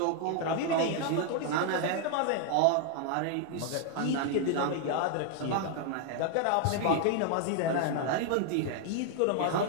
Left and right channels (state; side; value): different; both; correlation 0.00